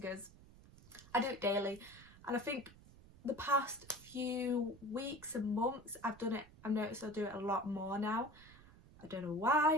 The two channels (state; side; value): noise; right; rumble, 21 dB below the sound